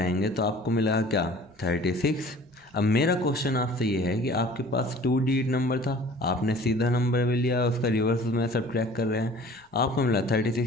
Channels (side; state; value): both; normal; correlation 0.47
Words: तो आपको मिलेगा क्या, 36। अब मेरा क्वेश्चन आपसे ये है कि आपके पास 2 डिजिट नंबर था, आपने सीधा नंबर भी लिया, उसका रिवर्स में सब्ट्रैक्ट कर रहे हैं, आपको मिला